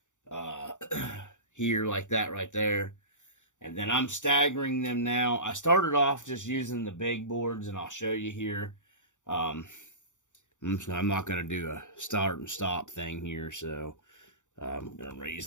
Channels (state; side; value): late; right; 0.85 ms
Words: here like that right there. And then I'm staggering them now. I started off just using the big boards, and I'll show you here. I'm not going to do a start and stop thing here, so I'm going to